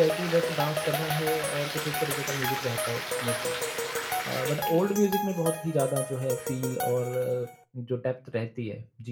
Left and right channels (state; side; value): identical; both; correlation 1.00